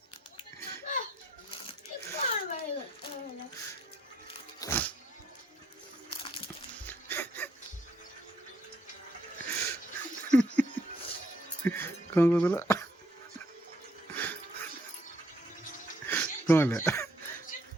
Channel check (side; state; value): both; normal; correlation 0.69